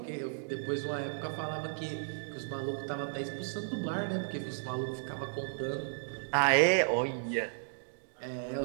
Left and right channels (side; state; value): left; silent; digital silence